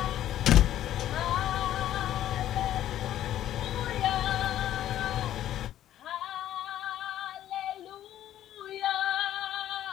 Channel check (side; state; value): right; quieter; 12.2 dB